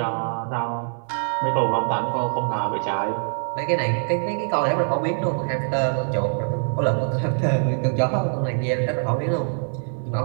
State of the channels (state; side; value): silent; left; 61 dB below the other